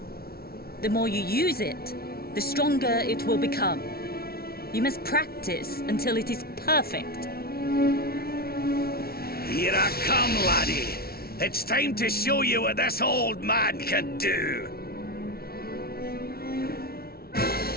The more you use it, the stronger it will become. You must practice until it is perfect. Here I come, laddie. It's time to show you what this old man can do.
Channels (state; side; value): late; right; 0.44 ms